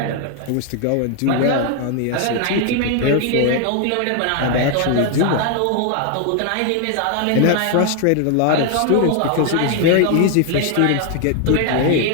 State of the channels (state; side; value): different; both; correlation 0.00